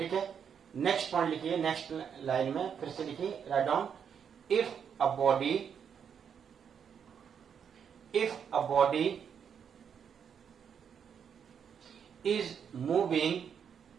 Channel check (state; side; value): quieter; left; 7.6 dB